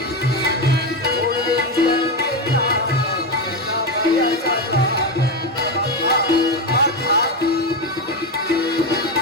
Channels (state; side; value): normal; both; correlation 0.13